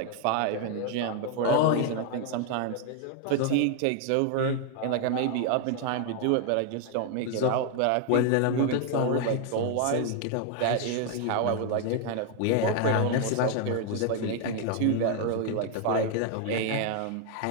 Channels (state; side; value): different; both; correlation 0.00